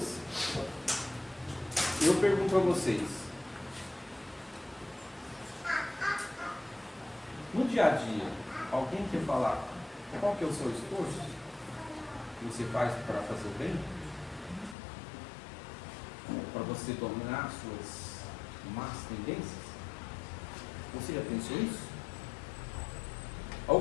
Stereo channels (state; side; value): drops out; right; at 14.8 s